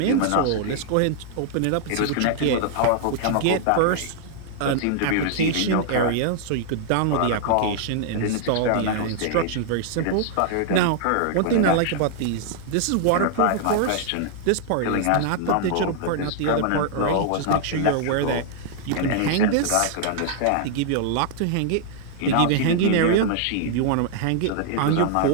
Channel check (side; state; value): both; different; correlation -0.01